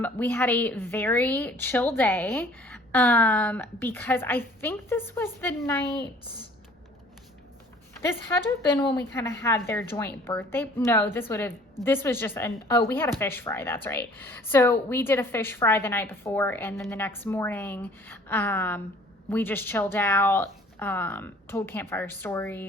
We had a very chill day because I think this was the night, this had to have been when we kind of had their joint birthday. No, this was just we had a fish fry. That's right. So we did a fish fry the night before, and then the next morning, we just chilled out, told campfire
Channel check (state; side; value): normal; both; correlation 0.53